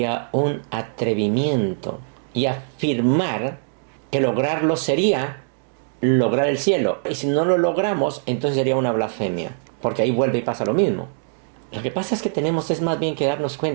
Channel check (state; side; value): silent; left; digital silence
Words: un atrevimiento. Y afirmar que lograrlo sería lograr el cielo. Y si no lo logramos, entonces sería una blasfemia. Porque ahí vuelve y pasa lo mismo. Lo que pasa es que tenemos es más bien que darnos